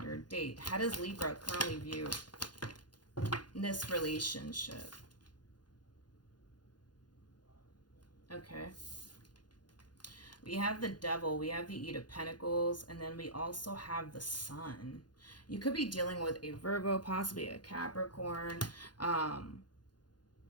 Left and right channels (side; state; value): right; late; 0.70 ms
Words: date. How does Libra currently view this relationship? Okay. We have the Devil, we have the Eight of Pentacles, and then we also have the Sun. You could be dealing with a Virgo, possibly a Capricorn,